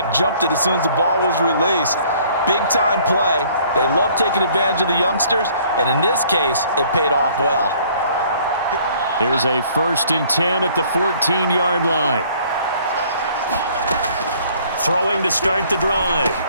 jumped it as soon as the ball was released. Big-time play. They love taking advantage of the youngsters, and in this case, it paid off well. Here's a 1st and 10 at the 14-yard line. Throwing to start the drive.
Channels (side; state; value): both; inverted; correlation -0.58